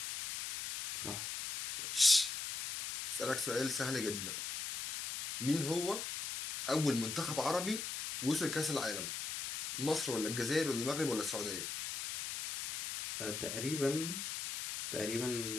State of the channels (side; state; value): left; noise; hiss, 5 dB below the sound